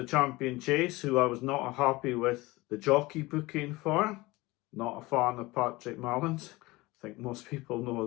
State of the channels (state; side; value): quieter; right; 21.3 dB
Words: Champion Chase who I was not happy with the jockey booking for. Not a fan of Patrick Mallins. I think most people know